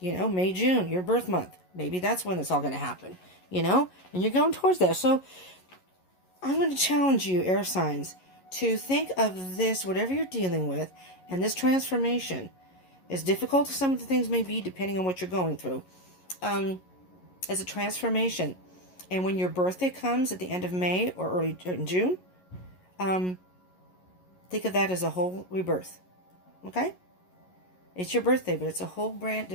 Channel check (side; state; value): right; late; 11 ms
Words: May, June, your birth month. Maybe that's when it's all going to happen. And you're going towards that. So I'm going to challenge you, air signs, to think of this, whatever you're dealing with, and this transformation, as difficult as some of the things may be, depending on what you're going through, as a transformation. And when your birthday comes at the end of May or early in June, think of that as a whole rebirth. Okay? It's your birthday, but it's a whole brand.